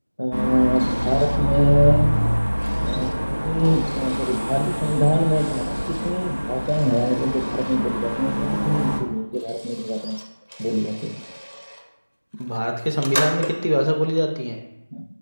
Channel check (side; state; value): both; inverted; correlation -1.00